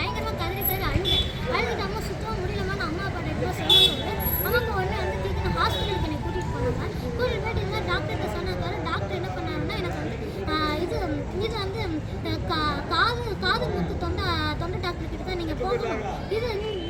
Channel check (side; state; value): both; identical; correlation 1.00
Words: கதறி அழுதுட்டு அம்மா சுத்தமாக முடியலமான்னு அம்மா அப்பா கிட்ட சொல்லும்போது அம்மாக்கு உடனே வந்து தூக்கி ஹாஸ்பிட்டலுக்கு என்னை கூட்டிகிட்டு போனாங்க. கூட்டிகிட்டு போயிட்டு இருந்தால் டாக்டர்கிட்ட சொன்னாங்க. டாக்டர் என்ன பண்ணாருன்னா எனக்கு வந்து இது வந்து காது முத்து தொண்டை டாக்டர் கிட்ட தான் நீங்கள் போகணும். இது